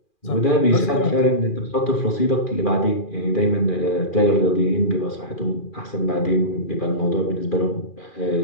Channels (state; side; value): late; right; 2.4 ms